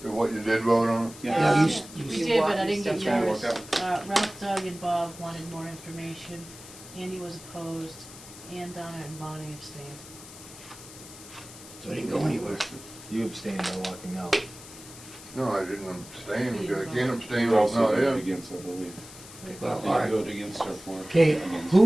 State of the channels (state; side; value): noise; left; hiss, 17 dB below the sound